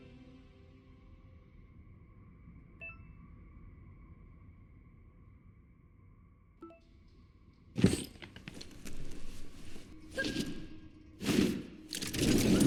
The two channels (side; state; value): both; identical; correlation 1.00